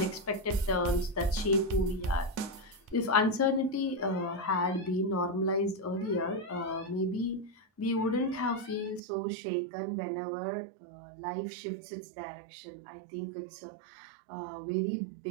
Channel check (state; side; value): drops out; left; at 9.0 s